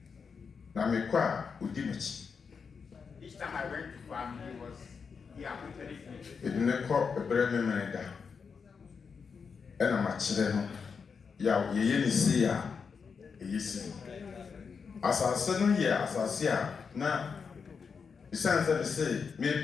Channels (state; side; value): quieter; right; 5.7 dB